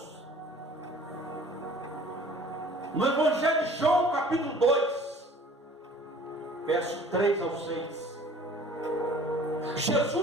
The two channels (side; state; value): both; normal; correlation 0.50